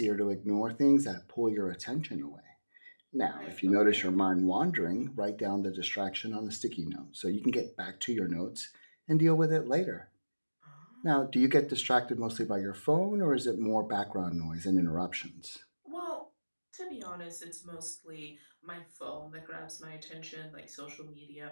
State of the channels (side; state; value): both; inverted; correlation -1.00